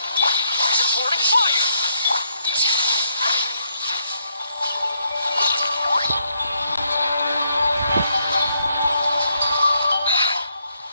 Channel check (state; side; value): inverted; both; correlation -0.75